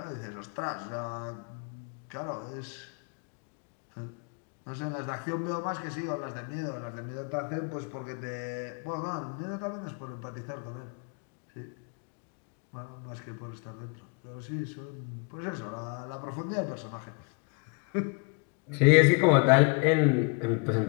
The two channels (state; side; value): quieter; right; 33.3 dB